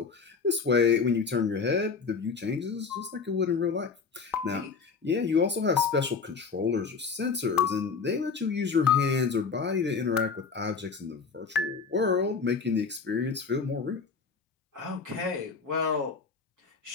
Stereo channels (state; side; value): quieter; right; 5.2 dB